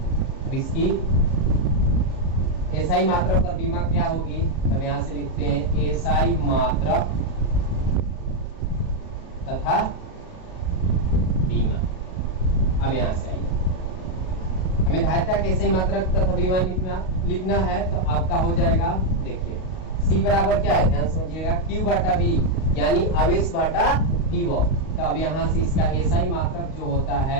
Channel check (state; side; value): late; right; 38 ms